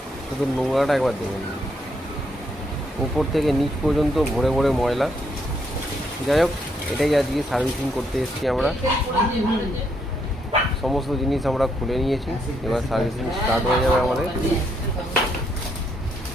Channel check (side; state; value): both; normal; correlation 0.75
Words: শুধু নোংরাটা একবার দেখে নিন, উপর থেকে নিচ পর্যন্ত ভরে ভরে ময়লা। যাই হোক, এটাই আজকে সার্ভিসিং করতে এসেছি আমরা। সমস্ত জিনিস আমরা খুলে নিয়েছি, এবার সার্ভিসিং স্টার্ট হয়ে যাবে আমাদের।